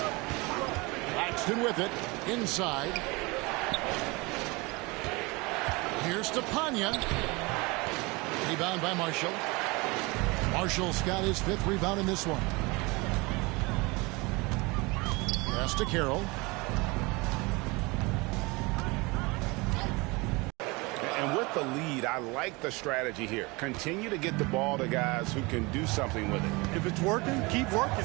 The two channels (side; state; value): left; quieter; 25.4 dB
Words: Claxton with it. Inside. Here's Stepanya. Rebound by Marshall. Marshall's got his 5th rebound in this one. Pass to Carroll. And with the lead, I like the strategy here. Continue to get the ball to guys who can do something with it. If it's working, keep working